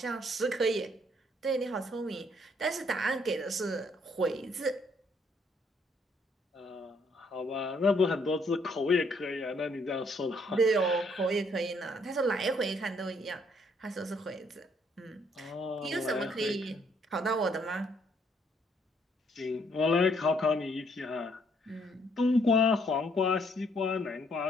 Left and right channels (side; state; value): both; normal; correlation 0.68